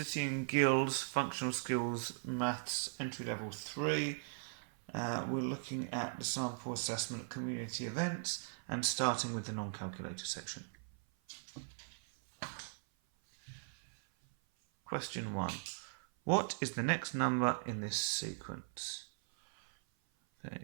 and Guilds Functional Skills Maths Entry Level 3. We're looking at the sample assessment community events and starting with the non-calculator section. Question 1. What is the next number in this sequence?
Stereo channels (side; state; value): left; silent; 52 dB below the other